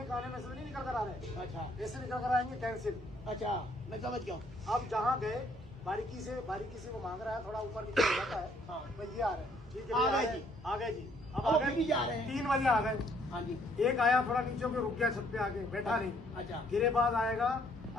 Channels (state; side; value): normal; both; correlation 0.65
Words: का आने में से नहीं निकल कर आ रहे, अच्छा ऐसे निकल कर आएंगे कैंसिल। अच्छा मैं समझ गया हूँ। अब जहाँ गए बारीकी से वो मांग रहा है, थोड़ा ऊपर नीचे हो जाता है। हाँ। भाई ये आ रहे हैं, ठीक है, आ भैया, गए जी। आ गए जी। अब अब आ फिर भी जा रहे गए हैं। 3 बजे आ गए। हाँ जी। एक आया थोड़ा नीचे होकर रुक गया छत पे आके, बैठा नहीं। अच्छा गिरेबाज आएगा,